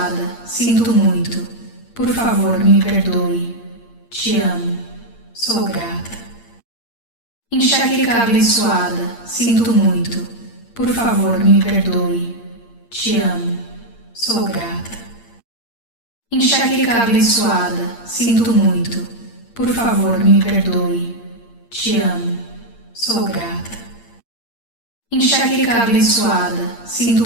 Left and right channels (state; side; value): late; right; 8.7 ms